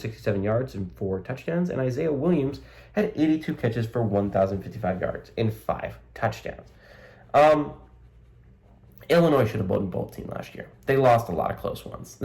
yards and 4 touchdowns. And Isaiah Williams had 82 catches for 1,055 yards and 5 touchdowns. Illinois should have been a bowl team last year. They lost a lot of close ones.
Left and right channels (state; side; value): identical; both; correlation 1.00